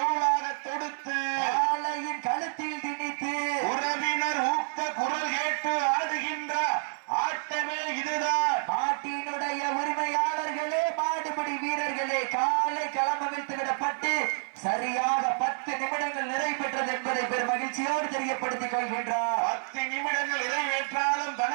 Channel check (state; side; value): silent; left; 59 dB below the other